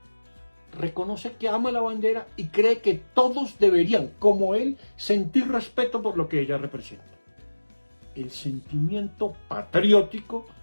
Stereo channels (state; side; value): inverted; both; correlation -1.00